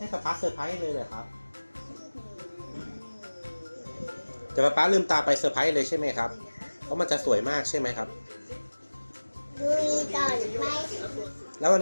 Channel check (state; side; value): inverted; both; correlation -1.00